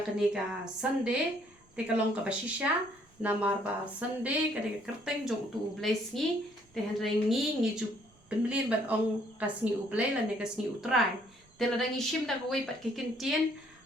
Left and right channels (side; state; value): both; normal; correlation 0.65